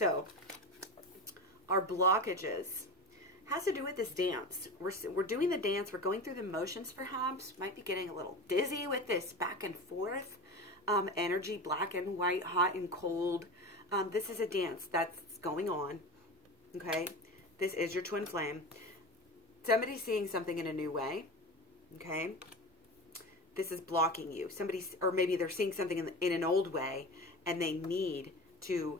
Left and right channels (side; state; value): both; normal; correlation 0.28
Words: our blockages has to do with this dance. We're doing the dance. We're going through the motions, perhaps. Might be getting a little dizzy with this back and forth. Energy, black and white, hot and cold. This is a dance that's going on, okay? This is your twin flame. Somebody's seeing something in a new way, okay? This is blocking you. Or maybe they're seeing something in an old way, and they need to